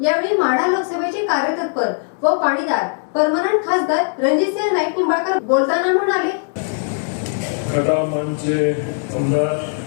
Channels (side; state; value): right; silent; digital silence